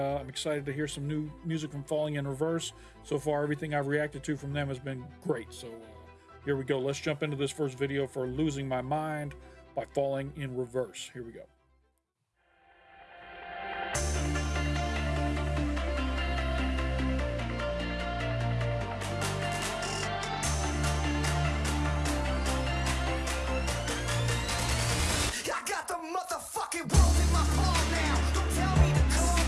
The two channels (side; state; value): both; identical; correlation 1.00